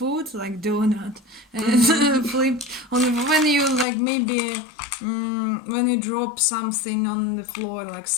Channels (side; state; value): right; drops out; at 3.9 s